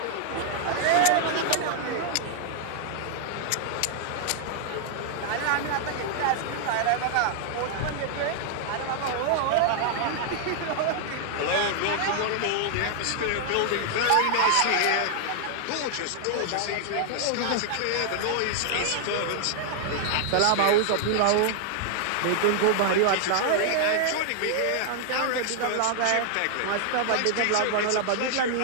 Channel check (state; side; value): different; both; correlation 0.00